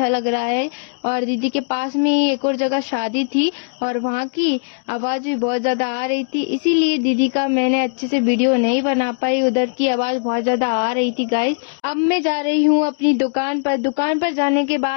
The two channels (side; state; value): right; silent; digital silence